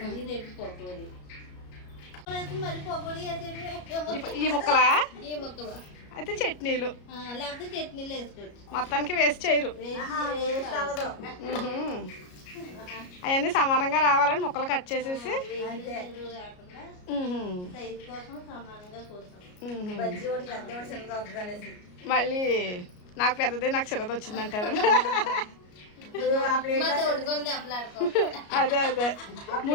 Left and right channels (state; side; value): late; right; 33 ms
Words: రేపు పకోడీ మరి పకోడీ ఈ ముక్కలా ఈ ముక్కలు అయితే చట్నీలు లేకపోతే చట్నీలు వేసుకోవచ్చు. మొత్తానికి వేస్ట్ చేయరు. వేస్ట్ అవ్వదు. అవన్నీ సమానంగా రావాలని ముక్కలు కట్ చేసేసి సైజు కోసం సమానంగా కోసం మళ్ళీ నాకు పెద్దది నాకు చిన్నది వచ్చిందంటారు. అదే అదే